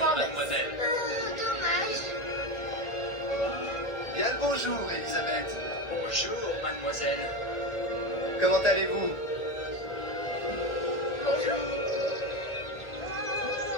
Dommage. Bien le bonjour, Elisabeth. Bonjour, mademoiselle. Comment allez-vous? Bonjour.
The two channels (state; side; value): late; right; 1.9 ms